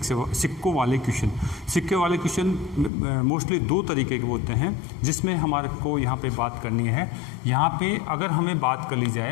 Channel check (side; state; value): right; drops out; at 2.9 s